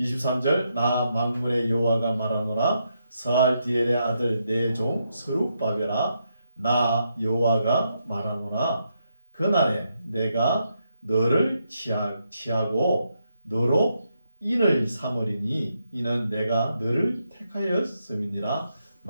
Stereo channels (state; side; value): inverted; both; correlation -0.81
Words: 나 만군의 여호와가 말하노라. 스알디엘의 아들 내 종 스룹바벨아 나 여호와가 말하노라. 그날에 내가 너를 취하고 너로 인을 삼으리니 이는 내가 너를 택하였음이니라.